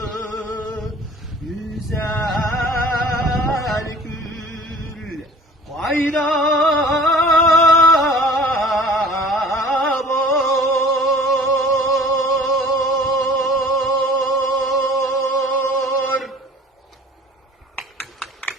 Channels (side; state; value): both; normal; correlation 0.46